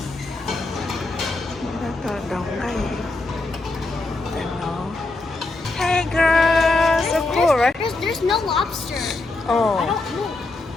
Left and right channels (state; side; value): quieter; right; 3.2 dB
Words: Rất là đông đây. Hey girl, so cool, right? There's no lobster. Oh. I don't know.